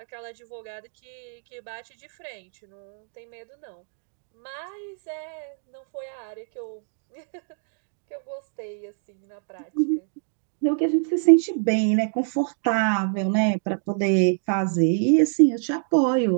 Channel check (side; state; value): left; silent; digital silence